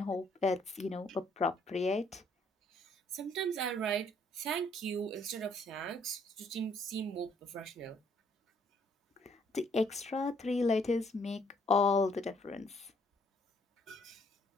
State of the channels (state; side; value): normal; both; correlation 0.65